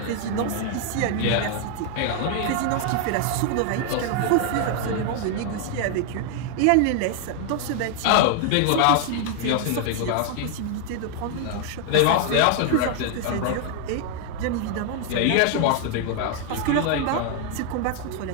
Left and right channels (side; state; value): both; different; correlation 0.00